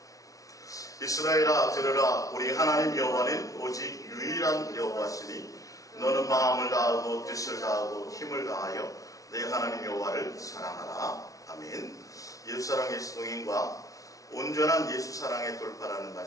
이스라엘아 들으라. 우리 하나님 여호와는 오직 유일한 여호와시니 너는 마음을 다하고 뜻을 다하고 힘을 다하여 내 하나님 여호와를 사랑하라. 아멘. 예수사랑 예수동행과 온전한 예수사랑의 돌파라는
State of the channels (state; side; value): late; right; 0.17 ms